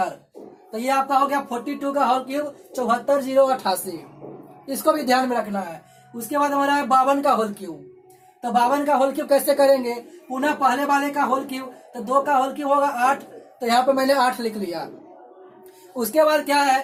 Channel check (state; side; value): identical; both; correlation 1.00